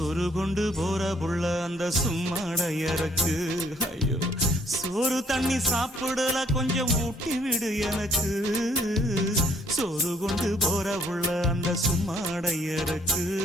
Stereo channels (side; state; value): both; normal; correlation 0.65